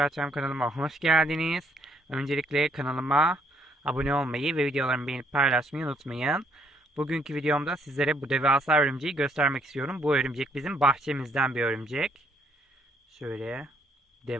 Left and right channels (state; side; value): normal; both; correlation 0.68